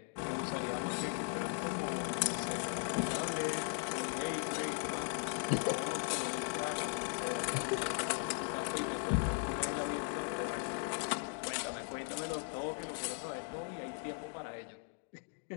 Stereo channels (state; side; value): silent; right; 52 dB below the other